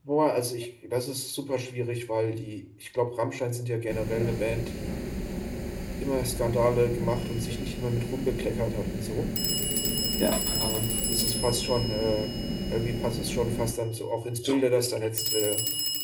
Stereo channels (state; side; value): identical; both; correlation 1.00